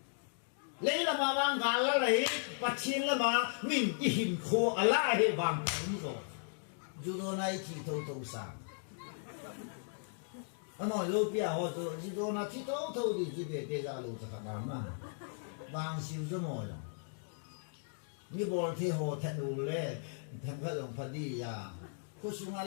来了嘛，往俺了来，把钱了嘛，命一hin苦，啊来去往工作，就到那一起头上。啊，那有变化就到那剃头的这边在家路子看到嘛，往修什么样？你不剃好剃路嘞，剃个龙发地呀。ku sunga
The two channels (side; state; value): right; silent; digital silence